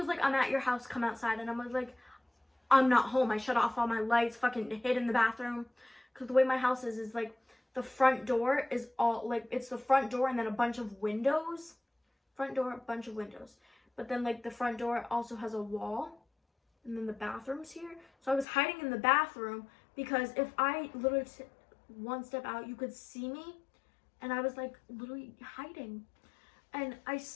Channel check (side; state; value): right; drops out; at 18.4 s